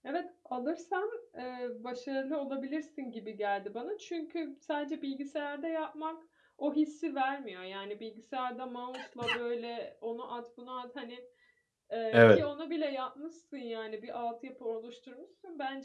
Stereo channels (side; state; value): both; identical; correlation 1.00